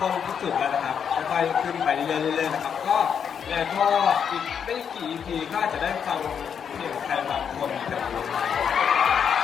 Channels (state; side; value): quieter; right; 7.5 dB